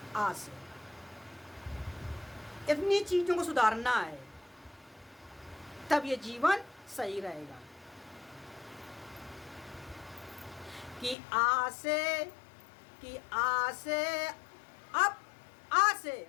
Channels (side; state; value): right; drops out; at 11.2 s